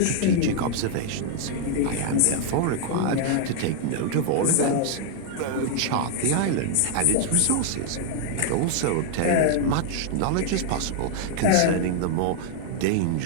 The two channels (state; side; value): different; both; correlation 0.00